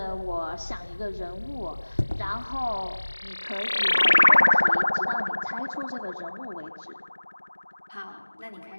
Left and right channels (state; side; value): inverted; both; correlation -1.00